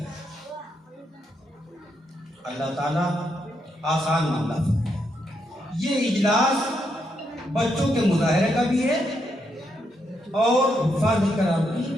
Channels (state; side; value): normal; both; correlation 0.79